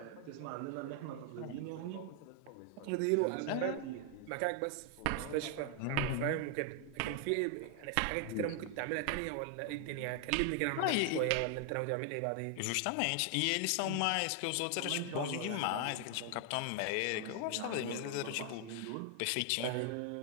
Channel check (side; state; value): both; different; correlation 0.00